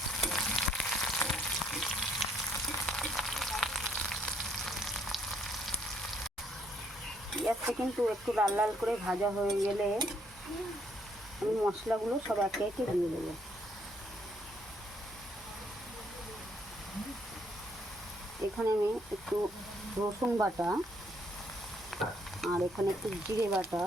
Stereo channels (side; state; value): both; normal; correlation 0.69